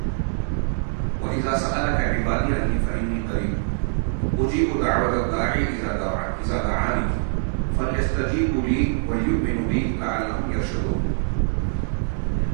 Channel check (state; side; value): silent; left; 62 dB below the other